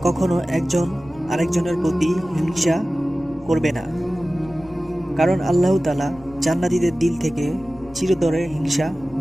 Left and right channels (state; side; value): noise; left; rumble, 23 dB below the sound